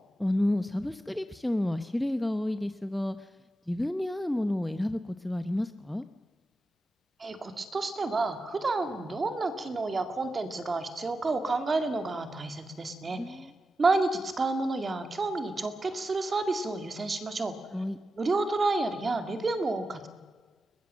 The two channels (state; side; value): normal; both; correlation 0.91